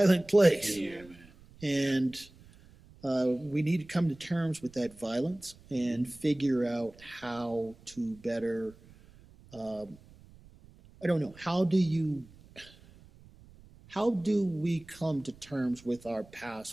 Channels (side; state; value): right; noise; rumble, 24 dB below the sound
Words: place. Yeah, man. And we need to come to terms with that violence and figure out how to better, how do we come to terms with our